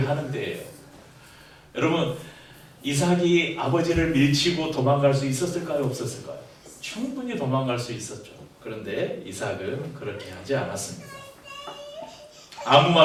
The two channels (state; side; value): identical; both; correlation 1.00